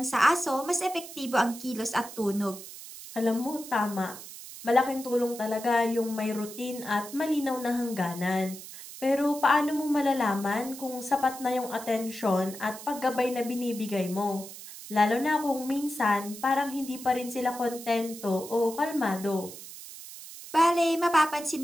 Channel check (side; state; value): right; noise; hiss, 13 dB below the sound